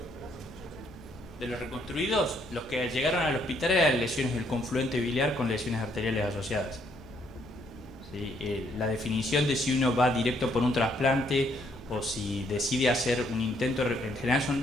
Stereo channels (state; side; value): normal; both; correlation 0.70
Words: De los reconstruidos, los que llegaron al hospital eran lesiones del confluente biliar con lesiones arteriales asociadas. ¿Sí? La definición de si uno va directo por un trasplante o si decide hacer un intento, en general